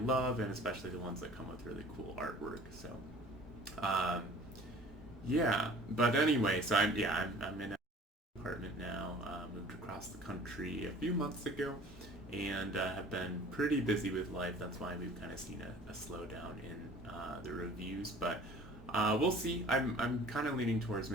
and especially the ones that come with really cool artwork. So, um, yeah. But anyway, so I'm in an apartment now. Moved across the country a few months ago, and have been pretty busy with life. That's why we've kind of seen a slowdown in the reviews, but. We'll see. I'm kind of leaning towards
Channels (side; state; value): both; normal; correlation 0.47